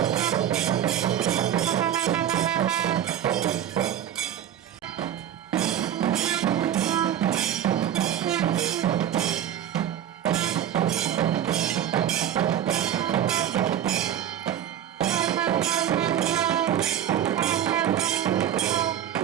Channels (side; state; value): left; quieter; 10.4 dB